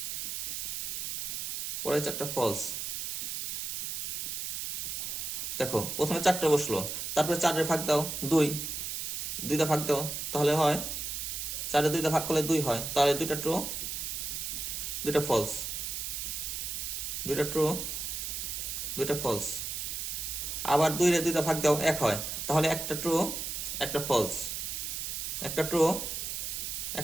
পরে 4টা ফলস। দেখো প্রথমে 4টা বসলো, তারপরে 4 ভাগ দাও 2 ভাগ দাও, তাহলে হয় 4 2 ভাগ করলে 2 হয়, তাহলে 2টা ট্রু 2টা ফলস, 2টা ট্রু 2টা ফলস। আবার 2 ভাগ দাও 1 হয়, তাহলে একটা ট্রু একটা ফলস, একটা ট্রু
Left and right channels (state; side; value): noise; right; hiss, 3 dB below the sound